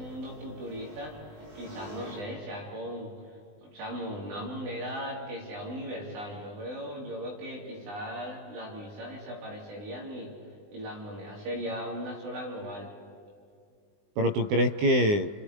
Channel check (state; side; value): late; left; 20 ms